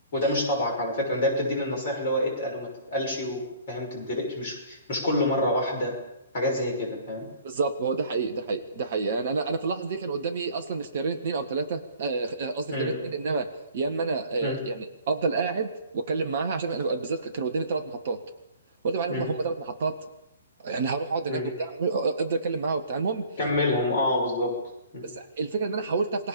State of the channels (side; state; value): both; inverted; correlation -0.51